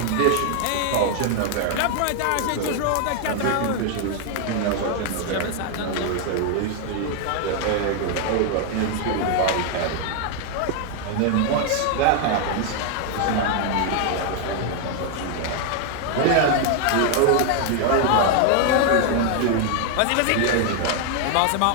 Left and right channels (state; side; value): different; both; correlation 0.00